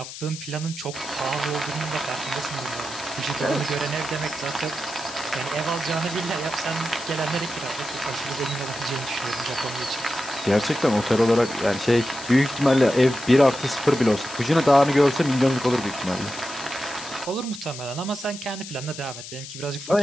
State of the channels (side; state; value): left; noise; hiss, 12 dB below the sound